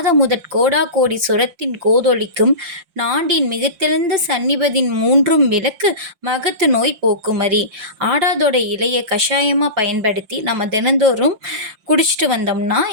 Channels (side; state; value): left; late; 5.7 ms